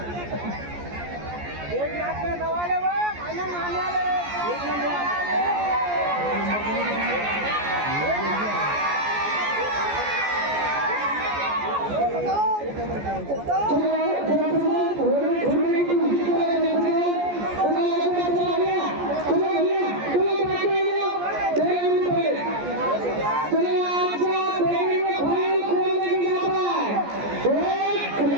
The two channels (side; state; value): left; late; 14 ms